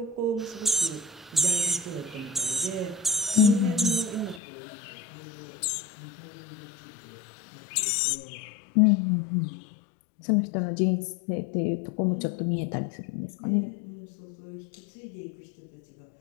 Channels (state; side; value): drops out; right; at 4.4 s